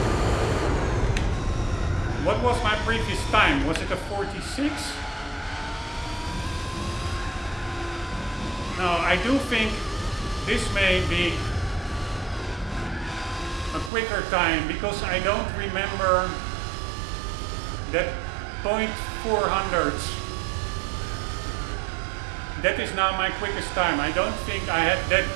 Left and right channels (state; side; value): drops out; left; at 13.9 s